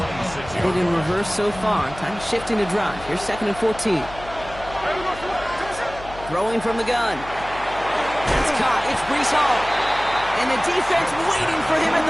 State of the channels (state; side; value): noise; left; hum, 16 dB below the sound